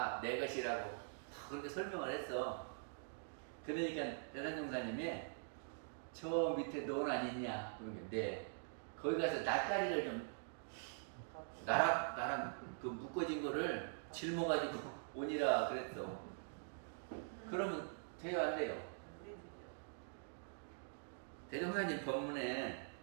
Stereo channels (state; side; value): silent; left; digital silence